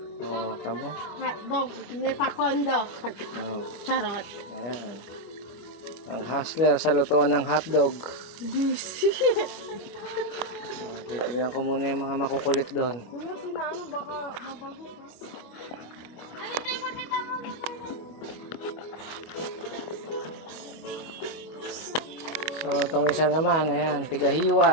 Oh, tamo. Hotdog, nepakondo. Oh, Charot. ayan. Ang hustler sa lutuan ng hotdog. Oh, titignan ko muna yung mga makukulit doon. Kuya, sinaano baka mabago ka. So, itong isa naman, ayan, tigahiwa.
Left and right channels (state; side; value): late; right; 25 ms